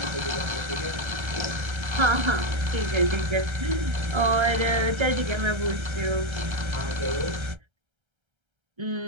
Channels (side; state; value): left; late; 1.3 ms